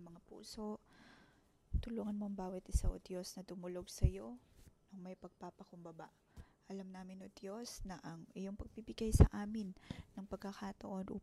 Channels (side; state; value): both; identical; correlation 1.00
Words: mga puso. Tulungan mong bawat isa, O Diyos, na dumulog sa iyo ng may pagpapakumbaba. Alam namin, O Diyos, na ang iyong pagbibigay sa amin ng pagkakataon